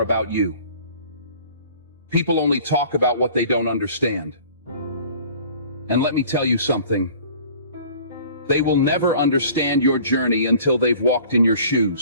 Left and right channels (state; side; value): inverted; both; correlation -0.49